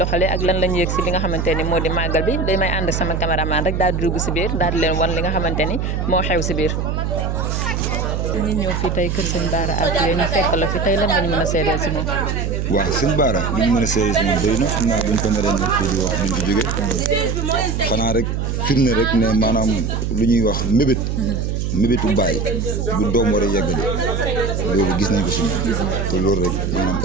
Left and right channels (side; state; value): right; noise; hum, 1 dB below the sound